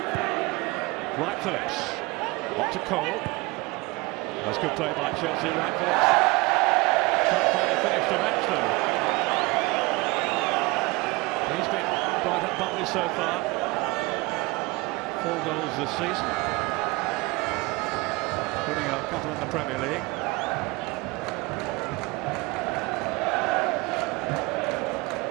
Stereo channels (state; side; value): quieter; left; 25.0 dB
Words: Wright Phillips. On to Cole. That's good play by Chelsea. Wright Phillips can't find a finish to match though. He's been right up Butley so far. 4 goals this season, including a couple in the Premier League.